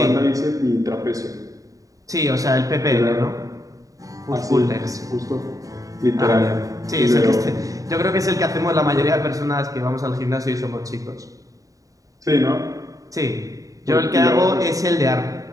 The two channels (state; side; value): late; left; 0.16 ms